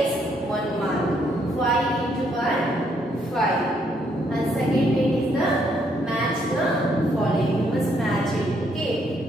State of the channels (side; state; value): both; normal; correlation 0.72